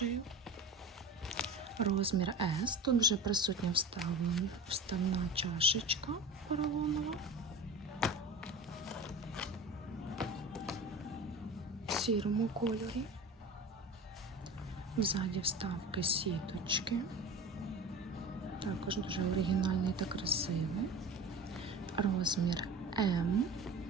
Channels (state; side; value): normal; both; correlation 0.34